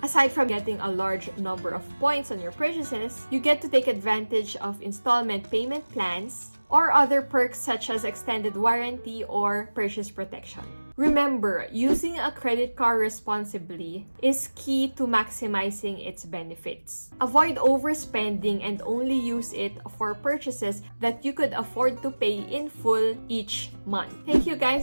Aside from getting a large number of points on your purchases, you get to take advantage of installment payment plans or other perks such as extended warranty or purchase protection. Remember, using a credit card responsibly is key to maximizing its benefits. Avoid overspending and only use it for purchases that you could afford to pay in full each month. Thank you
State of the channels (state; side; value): inverted; both; correlation -1.00